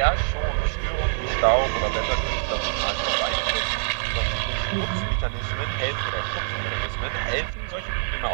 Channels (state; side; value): silent; left; 62 dB below the other